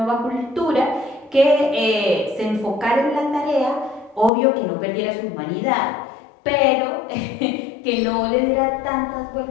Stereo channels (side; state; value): right; drops out; at 4.3 s